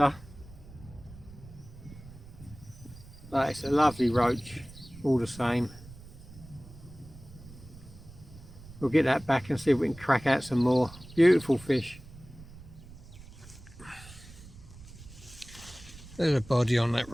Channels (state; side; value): noise; right; rumble, 18 dB below the sound